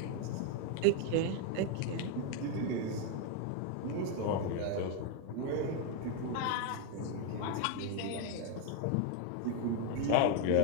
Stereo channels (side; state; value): both; different; correlation 0.01